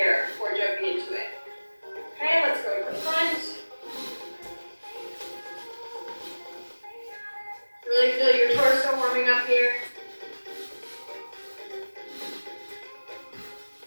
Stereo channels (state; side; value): inverted; both; correlation -1.00